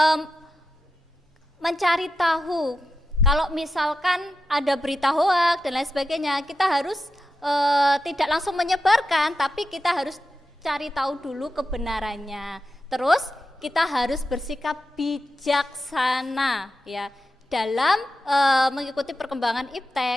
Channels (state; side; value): normal; both; correlation 0.90